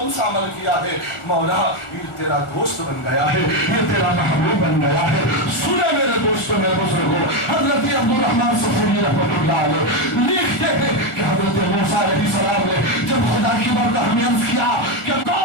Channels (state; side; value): late; right; 1.4 ms